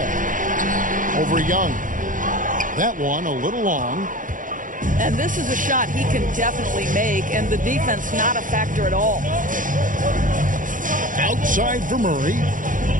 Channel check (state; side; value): late; left; 0.38 ms